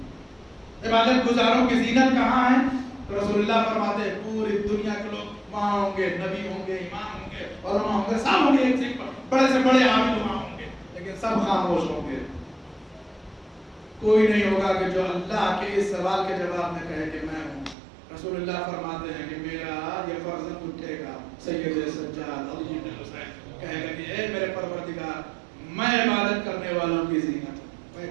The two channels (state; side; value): drops out; left; at 17.8 s